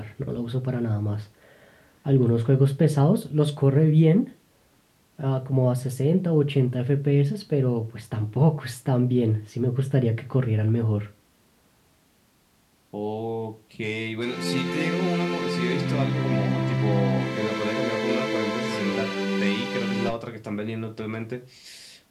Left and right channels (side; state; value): both; identical; correlation 1.00